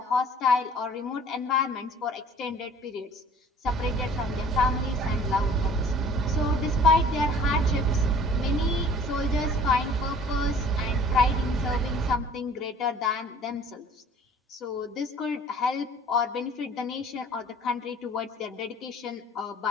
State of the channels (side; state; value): both; normal; correlation 0.50